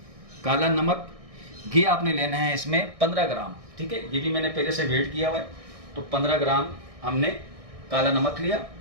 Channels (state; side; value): late; left; 1.6 ms